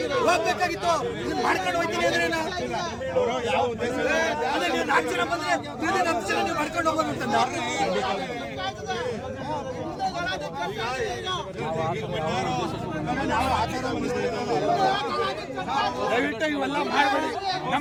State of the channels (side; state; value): both; identical; correlation 1.00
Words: ಹೋಗ್ಬೇಕಾಗಿತ್ತು ಮಾಡ್ಕೊಂಡು ಹೋಗ್ತೀನಿ ಅಂದ್ರೆ ಯಾವ ಉದ್ದೇಶ ನೀವು 4 ಜನ ಬಂದ್ರೆ 10 ಜನ ನೀವು ಮಾಡ್ಕೊಂಡು ಹೋಗೋದು. ದಯವಿಟ್ಟು ಇವೆಲ್ಲ ಮಾಡಬೇಡಿ.